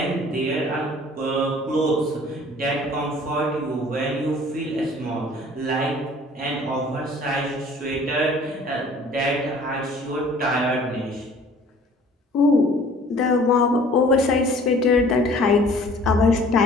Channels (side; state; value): both; normal; correlation 0.52